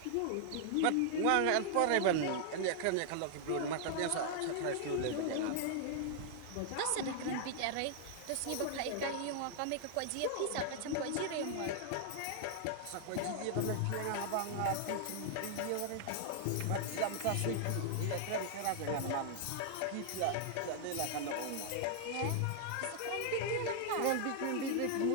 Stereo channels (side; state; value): both; different; correlation 0.00